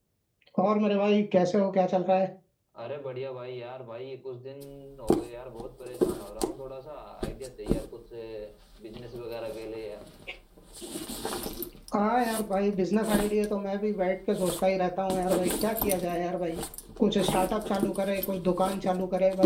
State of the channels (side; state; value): both; identical; correlation 1.00